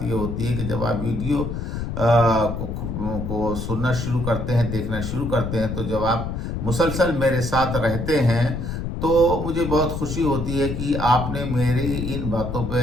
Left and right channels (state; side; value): noise; left; rumble, 4 dB below the sound